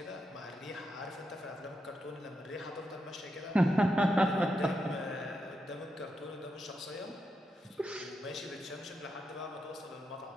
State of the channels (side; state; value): both; normal; correlation 0.85